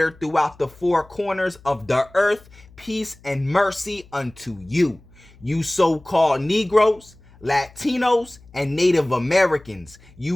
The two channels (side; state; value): left; noise; hum, 25 dB below the sound